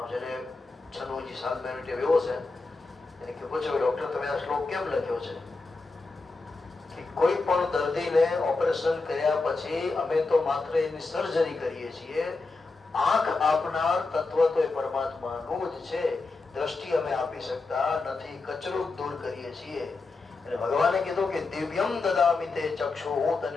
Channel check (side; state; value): right; quieter; 3.7 dB